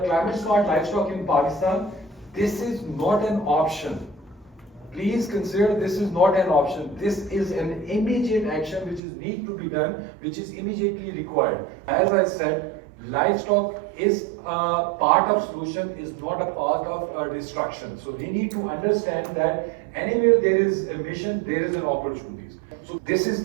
Climate smart livestock in Pakistan, this is not an option. Please consider this is not an option. This is an immediate action which is need to be done, which is immediately required. As I said, livestock is a part of solution, is not a part of destruction. So we need to understand that anywhere there is a mission, there is an opportunity. So this is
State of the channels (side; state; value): left; drops out; at 9.0 s